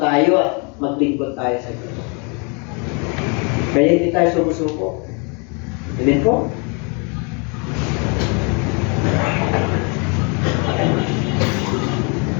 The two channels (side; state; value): right; quieter; 34.0 dB